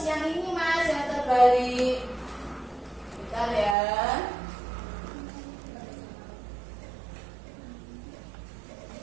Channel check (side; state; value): left; drops out; at 3.8 s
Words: yang ini Mas yang terbalik. Bentar ya.